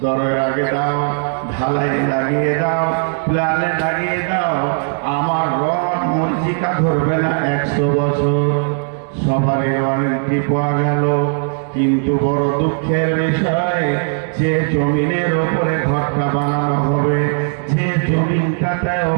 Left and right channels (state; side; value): silent; left; digital silence